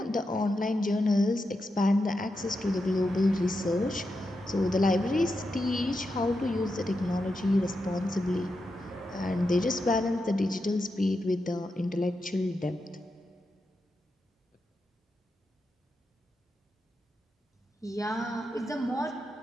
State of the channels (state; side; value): normal; both; correlation 0.87